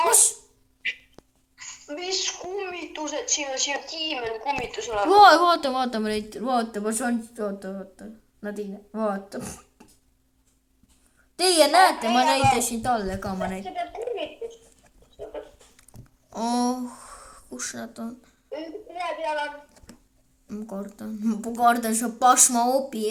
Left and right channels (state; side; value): identical; both; correlation 1.00